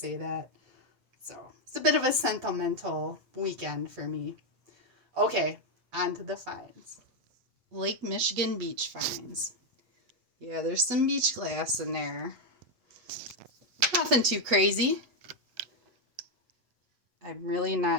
that. So, it's a bit of a sentimental weekend for me. Okay, on to the finds. Lake Michigan beach finds. Yeah, there's some beach glass in there. Nothing too crazy. I'm really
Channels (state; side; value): late; left; 8.3 ms